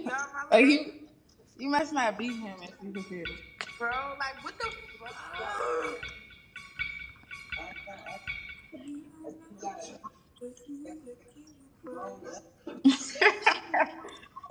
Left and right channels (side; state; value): both; identical; correlation 1.00